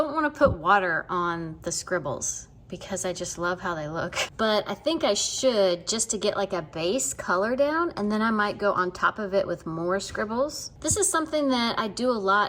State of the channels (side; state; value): both; identical; correlation 1.00